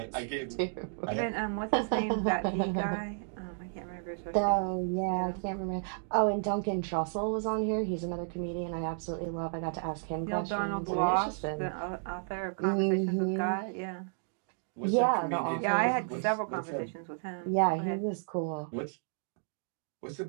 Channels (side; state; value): left; silent; digital silence